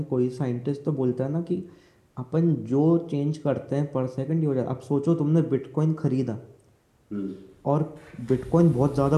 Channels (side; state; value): both; identical; correlation 1.00